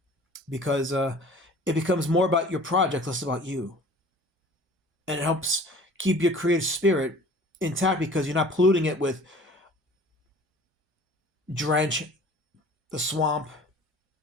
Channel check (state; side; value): normal; both; correlation 0.47